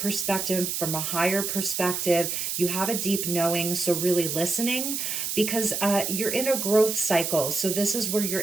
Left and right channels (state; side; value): noise; right; hiss, 2 dB below the sound